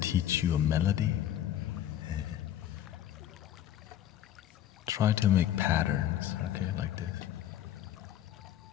you a melody? Try to make patterns, okay, like this.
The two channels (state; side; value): quieter; right; 11.5 dB